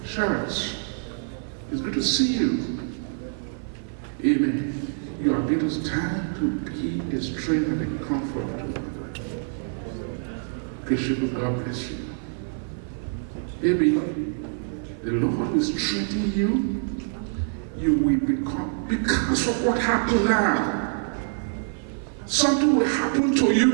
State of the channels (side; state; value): left; silent; 55 dB below the other